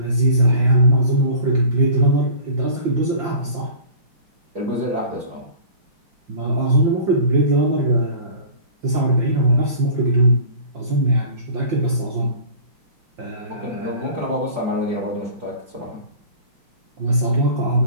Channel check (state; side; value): late; left; 5.7 ms